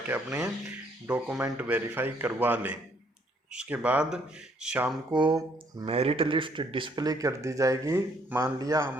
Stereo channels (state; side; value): normal; both; correlation 0.66